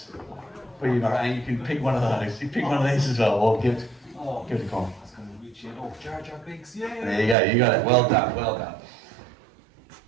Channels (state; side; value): drops out; left; at 7.4 s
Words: for you, Mara, and you can pick one of those. You pick one of these as well, or give it a call. Jar Jar Binks, yeah. There you go, you got it. Well done, well done.